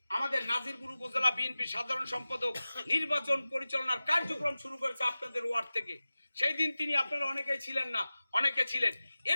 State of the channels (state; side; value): inverted; both; correlation -0.96